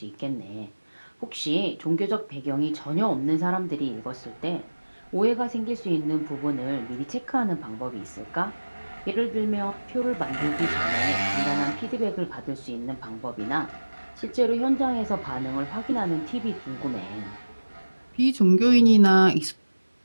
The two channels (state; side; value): inverted; both; correlation -1.00